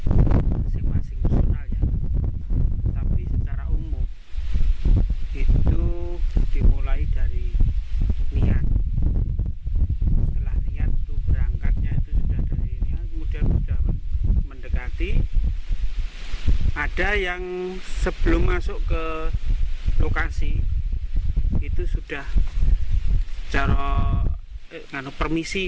masing-masing personal ya. Tapi secara umum itu dimulai dari niat. Setelah niat itu berangkatnya itu sudah dari niat, kemudian sudah mendekati. Ada yang sebelum masuk ke lokasi itu sudah secara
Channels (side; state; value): both; identical; correlation 1.00